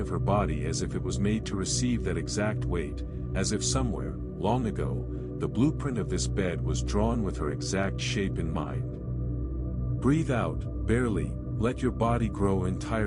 her body as if it was made to receive that exact weight, as if somewhere, long ago, the blueprint of this bed was drawn with her exact shape in mind. Breathe out, barely, let your body grow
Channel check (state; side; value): identical; both; correlation 1.00